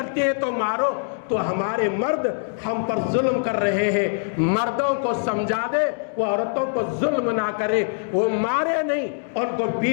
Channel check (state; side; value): silent; right; digital silence